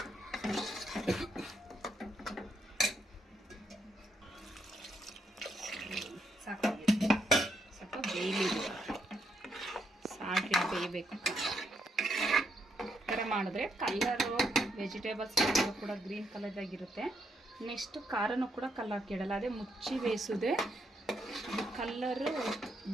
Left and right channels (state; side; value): normal; both; correlation 0.76